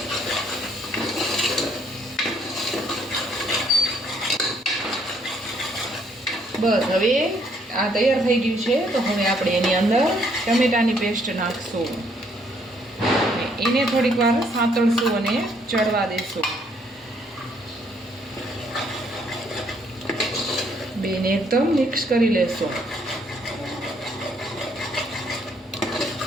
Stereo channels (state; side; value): normal; both; correlation 0.68